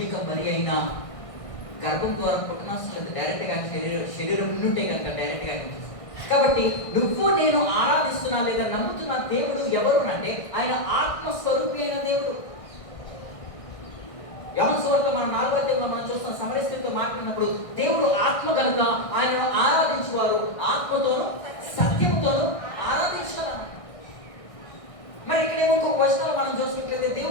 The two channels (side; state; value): right; late; 1.6 ms